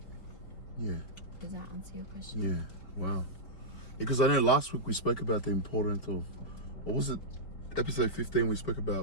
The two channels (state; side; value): late; right; 4.5 ms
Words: does that answer your question? Yeah, wow. Because I know last week we spoke about the importance of, what was it, episode 15, we spoke